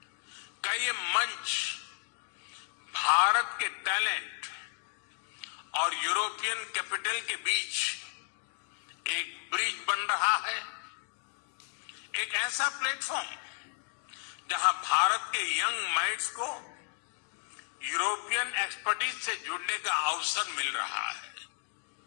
का ये मंच भारत के टैलेंट और यूरोपियन कैपिटल के बीच एक ब्रिज बन रहा है, एक ऐसा प्लेटफॉर्म जहां भारत के यंग माइंड्स को यूरोपियन एक्सपर्टीज से जुड़ने का अवसर मिल रहा है।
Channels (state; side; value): silent; right; 56 dB below the other